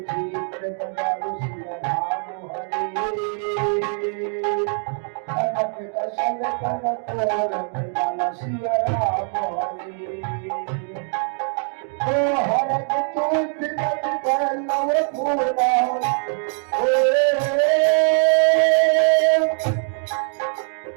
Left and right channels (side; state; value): left; silent; 57 dB below the other